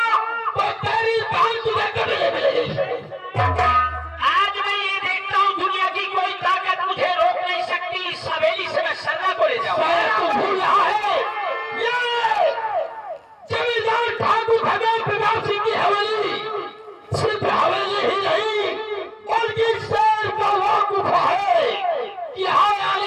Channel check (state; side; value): identical; both; correlation 1.00